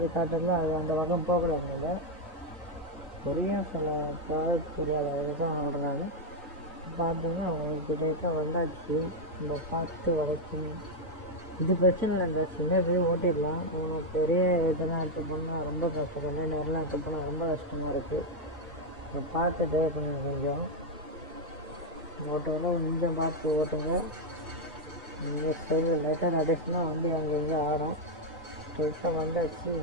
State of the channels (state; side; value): normal; both; correlation 0.02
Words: காட்டுறதுல அது அந்த பக்கம் போகக்கூடாது. புரியும் சில ப்ராடக்ட் புரியாத தான் ஓடுறாங்க. பார்த்தீங்கன்னா அவங்களுக்கு கிட்ட வந்தாச்சு. நம்ம பார்த்து வளைக்கணும். இது பிரச்சனை இல்லை. இந்த சின்ன இது ஓட்டிடலாம். பெரிய இதெல்லாம் எடுத்து போனால் ரொம்ப கஷ்டம். கண்டெய்னர்லாம் எடுத்து போனால் ரொம்ப கஷ்டமாக இருக்குது. இப்போ பார்த்து ட்ரைவ் பண்ணுங்க. கொஞ்சம் ஓட்டுவோம். கொஞ்சம் பார்த்து ஓட்டுங்க. இங்கே சைடில் லைட்டாக நடிச்சுனா வந்து அங்கே இங்கே ஆடும். ஸ்ட்ரெயிட்டாக வந்தாச்சு.